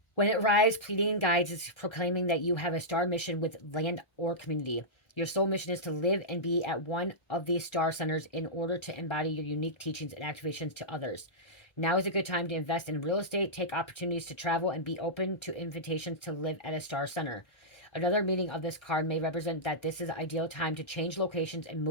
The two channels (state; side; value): late; right; 1.3 ms